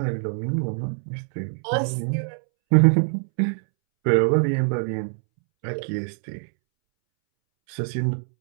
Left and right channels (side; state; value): left; silent; 63 dB below the other